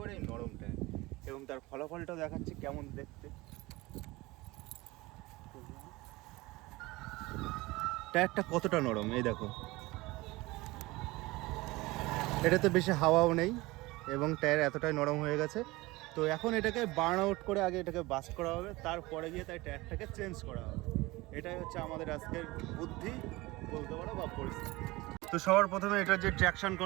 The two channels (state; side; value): quieter; left; 21.2 dB